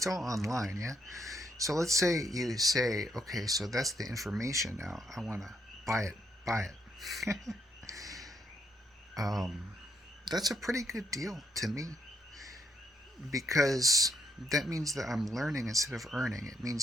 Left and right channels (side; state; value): both; normal; correlation 0.75